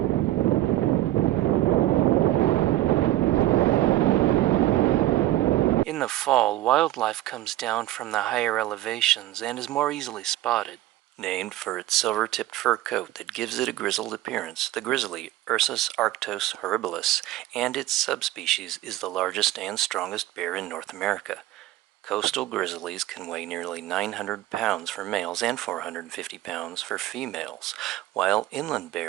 In the fall, wildlife comes down from the higher elevations and is more easily spotted. Named for its silver-tipped fur coat that gives it a grizzled appearance, the grizzly, Ursus arctos horribilis, and its subspecies is the largest and strongest bear in North America. Coastal grizzlies can weigh nearly 900 pounds for males and 450 pounds for females, while inland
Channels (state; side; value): quieter; left; 15.3 dB